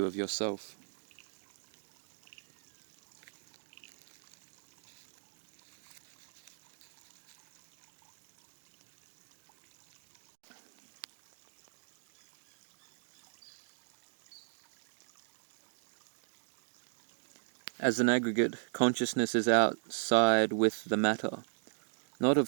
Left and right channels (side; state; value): left; silent; digital silence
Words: of yourself. As an aggregate, consciousness is outside with the matter. Not